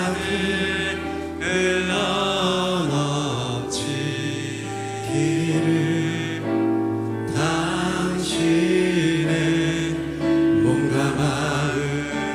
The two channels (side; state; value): both; identical; correlation 1.00